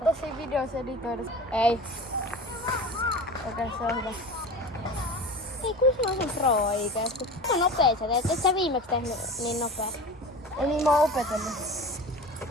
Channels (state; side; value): normal; both; correlation 0.34